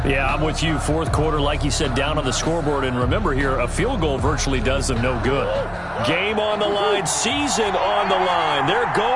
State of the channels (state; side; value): identical; both; correlation 1.00